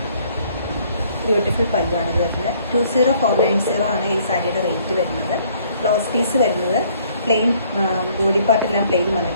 ബ്യൂട്ടിഫുൾ പല്ലുവാണ് ഇത് വരുന്നത്. 20490 ആണ് ഈ സാരിയുടെ റേറ്റ് വരുന്നത്. ബ്ലൗസ് പീസ് വരുന്നത് പ്ലെയിൻ, ബോഡി പാർട്ടെല്ലാം പ്ലെയിൻ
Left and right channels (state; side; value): inverted; both; correlation -0.62